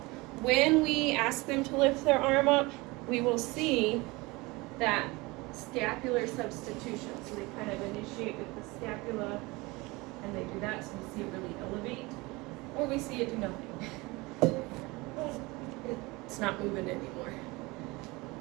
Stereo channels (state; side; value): quieter; left; 23.4 dB